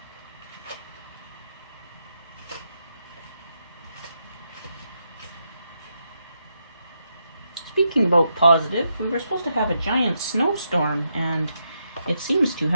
Speaking about positive, we were supposed to have a giant snowstorm, and it seems to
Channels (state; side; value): inverted; both; correlation -0.82